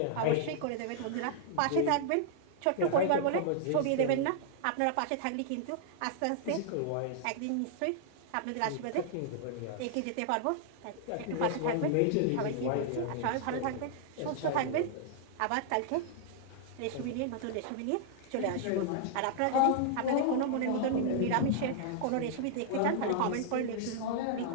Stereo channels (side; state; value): both; different; correlation -0.01